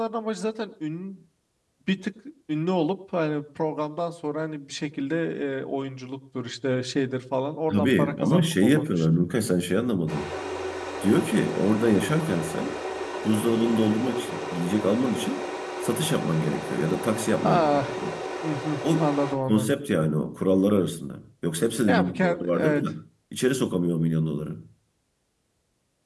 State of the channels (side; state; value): both; identical; correlation 1.00